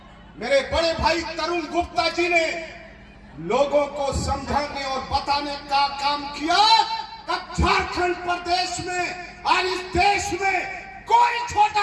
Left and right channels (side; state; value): both; identical; correlation 1.00